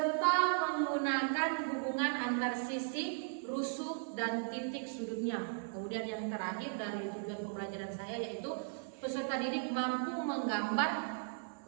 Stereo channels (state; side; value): silent; left; 53 dB below the other